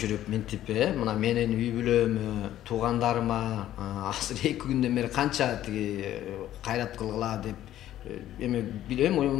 минтип, мына менин үй бүлөмө, туугандарыма азыр 2 күндөн бери канча тиги кайрат кылгыла деп эме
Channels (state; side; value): quieter; right; 12.7 dB